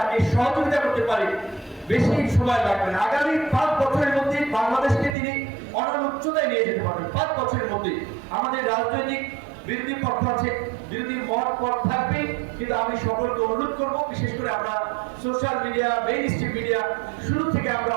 সহযোগিতা করতে পারি, বেশি সময় লাগবে না। আগামী 5 বছরের মধ্যে বাংলাদেশকে তিনি অনন্য উচ্চতায় নিয়ে যেতে পারবেন। 5 বছরের মধ্যে আমাদের রাজনৈতিক বিরোধী পক্ষ আছে, বিরোধী মত পথ থাকবে, কিন্তু আমি সকলকে অনুরোধ করব, বিশেষ করে আমরা social media, main stream media শুরু থেকে আমরা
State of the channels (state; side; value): drops out; left; at 5.2 s